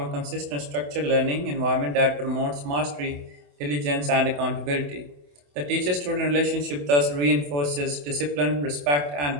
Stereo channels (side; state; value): left; late; 28 ms